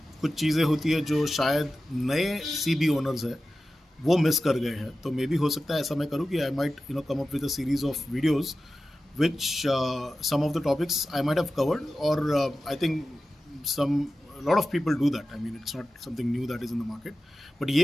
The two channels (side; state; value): both; normal; correlation 0.94